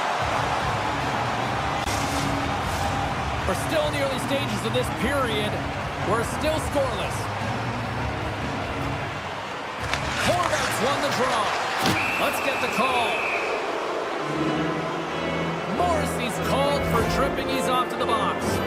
We're still in the early stages of this period. We're still scoreless. Kodiak's won the draw. Let's get the call. Morrissey's called for tripping. He's off to the box.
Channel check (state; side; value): identical; both; correlation 1.00